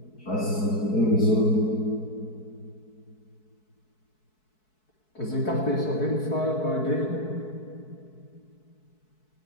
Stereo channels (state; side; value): late; right; 4.6 ms